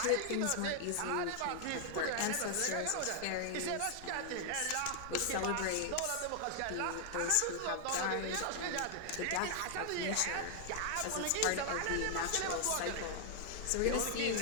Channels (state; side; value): different; both; correlation 0.00